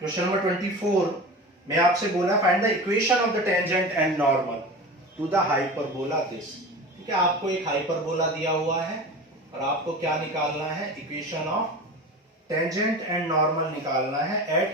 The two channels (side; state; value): both; normal; correlation 0.32